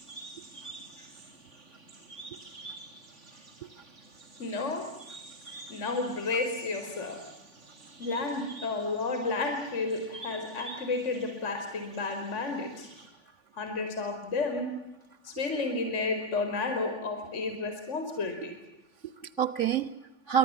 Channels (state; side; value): late; right; 3.5 ms